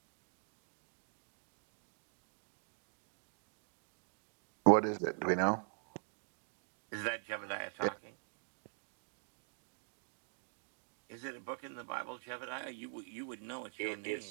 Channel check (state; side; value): silent; left; digital silence